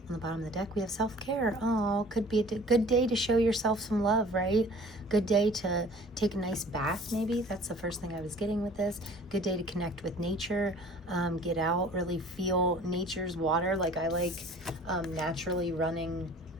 the bottom of the deck, we have self-care. Oh, could be a good day to show yourself some love, right? Good day to take a nice bath, maybe. That's the first thing I was getting with this. Good day to connect with nature, get out, really feel nature's water. Like I like naturally running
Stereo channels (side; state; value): both; normal; correlation 0.49